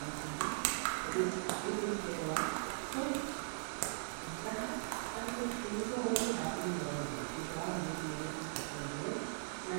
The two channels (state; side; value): silent; left; digital silence